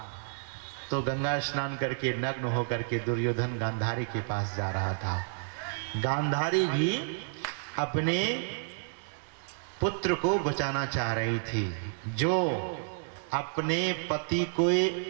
तो गंगा स्नान करके नग्न होकर के दुर्योधन गांधारी के पास जा रहा था। गांधारी भी अपने पुत्र को बचाना चाह रही थी, जो अपने पति को,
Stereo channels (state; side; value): silent; left; 57 dB below the other